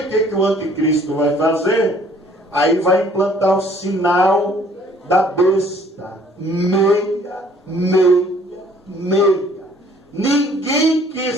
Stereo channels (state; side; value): normal; both; correlation 0.58